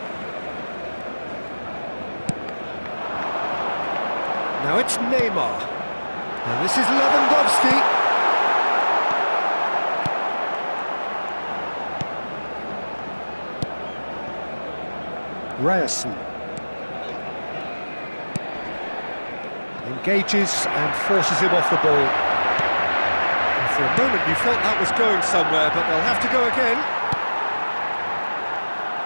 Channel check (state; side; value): inverted; both; correlation -1.00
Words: Now it's Neymar. And this is Lewandowski. Ryerson. Engages and forces him off the ball. And for a moment you felt that was going somewhere, but they'll have to go again.